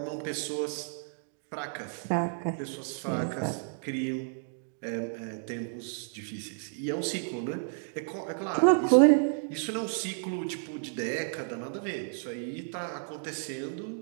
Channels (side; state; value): left; silent; digital silence